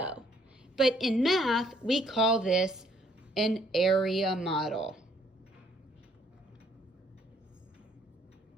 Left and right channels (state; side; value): normal; both; correlation 0.65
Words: But in math, we call this an area model.